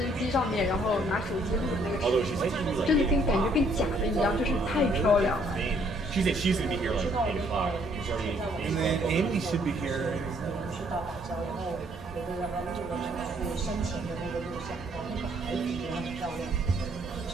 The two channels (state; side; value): normal; both; correlation 0.65